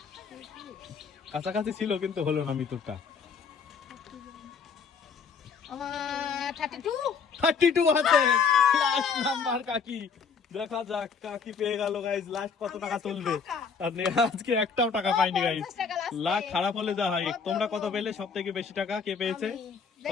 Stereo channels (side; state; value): right; quieter; 5.8 dB